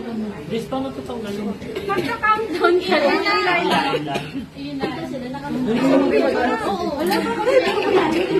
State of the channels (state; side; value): identical; both; correlation 1.00